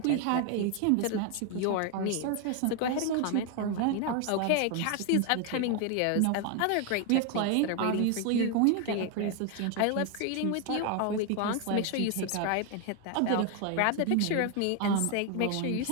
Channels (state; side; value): different; both; correlation 0.01